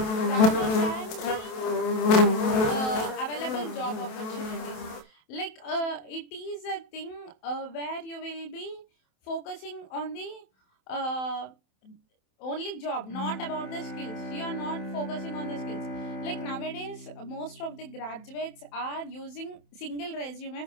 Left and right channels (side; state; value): right; late; 28 ms